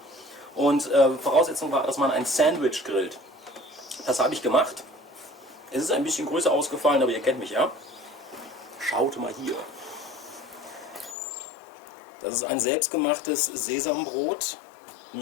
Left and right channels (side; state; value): right; drops out; at 11.2 s